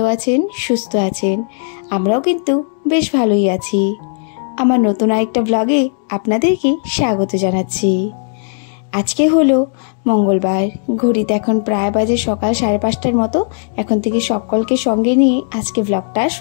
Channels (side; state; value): right; silent; digital silence